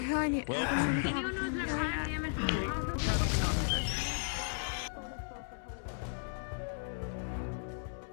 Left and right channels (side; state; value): right; silent; digital silence